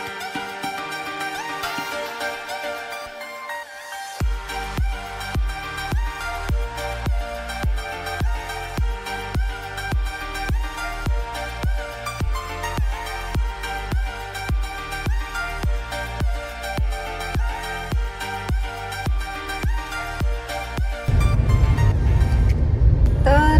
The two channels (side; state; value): both; identical; correlation 1.00